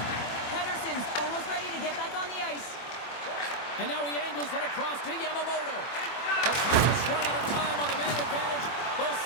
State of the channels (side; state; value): right; late; 24 ms